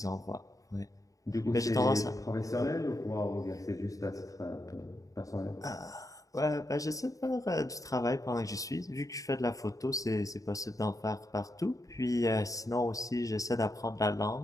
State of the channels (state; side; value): late; right; 0.16 ms